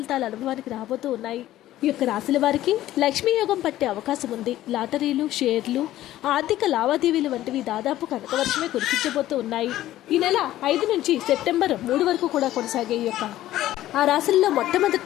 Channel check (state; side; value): quieter; right; 14.2 dB